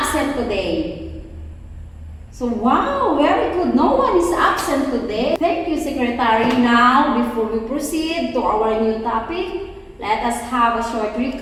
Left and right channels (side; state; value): both; identical; correlation 1.00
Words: today? So, wow, very good. No one is absent today. Thank you, Secretary. Now, before we proceed to our new topic, let us have a short